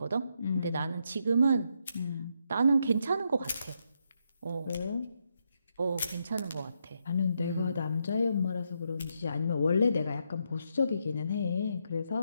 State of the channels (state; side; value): inverted; both; correlation -0.79